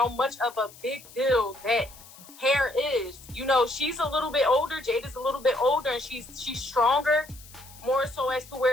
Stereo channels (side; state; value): left; noise; hiss, 20 dB below the sound